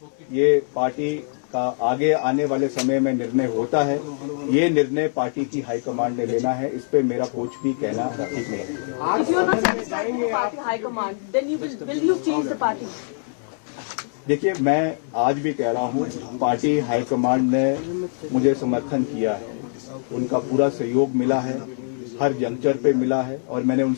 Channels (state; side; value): silent; right; 63 dB below the other